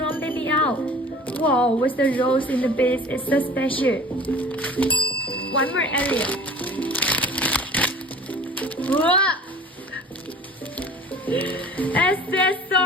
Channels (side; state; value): both; normal; correlation 0.44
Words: baby owl. Wow, with the rose in the base, it's so special. One more area. Wow.